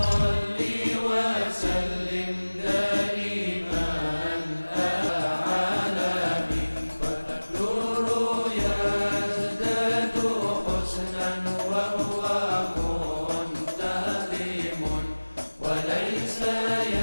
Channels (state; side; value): inverted; both; correlation -1.00